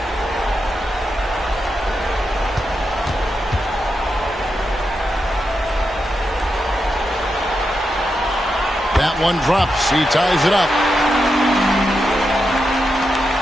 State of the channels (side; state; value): both; normal; correlation 0.86